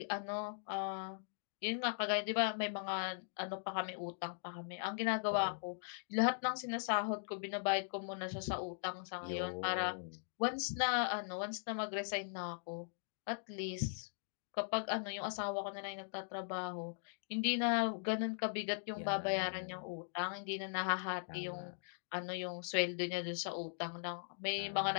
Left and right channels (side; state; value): right; silent; digital silence